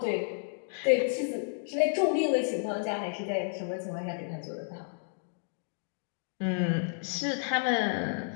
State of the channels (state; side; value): silent; right; digital silence